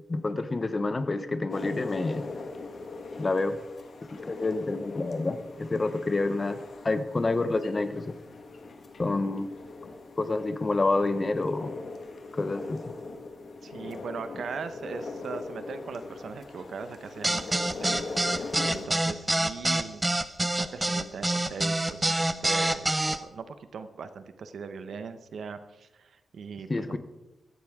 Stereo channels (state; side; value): normal; both; correlation 0.94